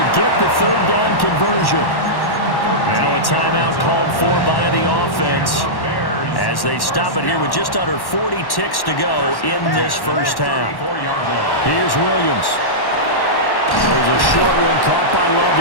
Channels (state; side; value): late; right; 1.1 ms